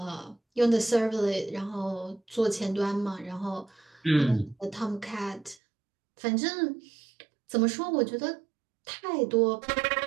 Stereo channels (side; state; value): left; drops out; at 5.6 s